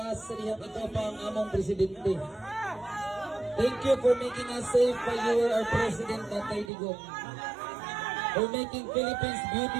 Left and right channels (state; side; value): drops out; left; at 6.7 s